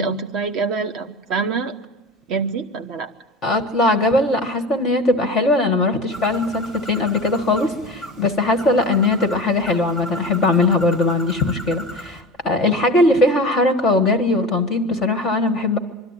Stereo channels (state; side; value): normal; both; correlation 0.32